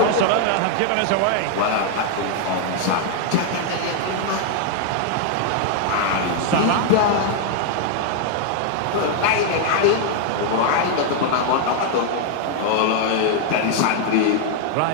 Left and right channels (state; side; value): different; both; correlation 0.00